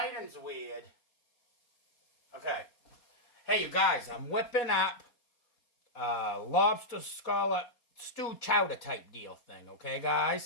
weird. Okay. Hey, you guys, I'm whipping up lobster scallop stew chowder type deal thing, okay,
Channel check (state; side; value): late; right; 4.3 ms